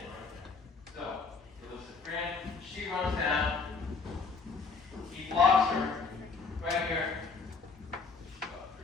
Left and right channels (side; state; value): right; quieter; 4.6 dB